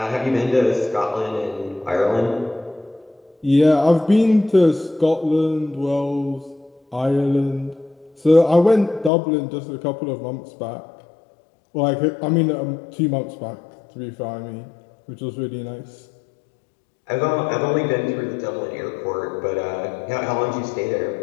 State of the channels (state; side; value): drops out; right; at 9.1 s